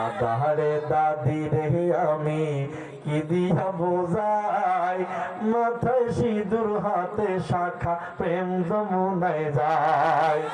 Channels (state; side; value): identical; both; correlation 1.00